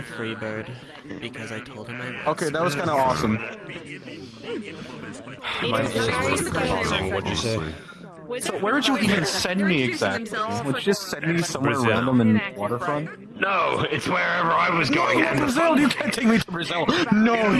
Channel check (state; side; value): identical; both; correlation 1.00